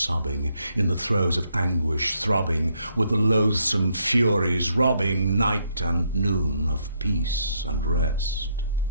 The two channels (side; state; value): both; inverted; correlation -0.74